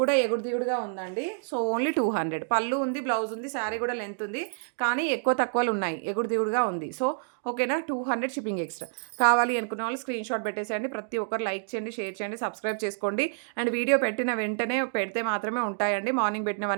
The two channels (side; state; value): left; silent; digital silence